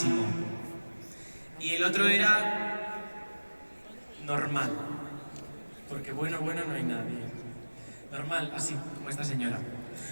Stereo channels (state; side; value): inverted; both; correlation -1.00